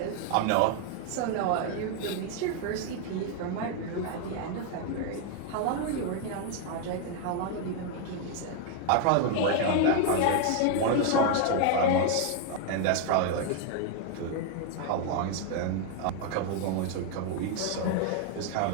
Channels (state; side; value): different; both; correlation 0.00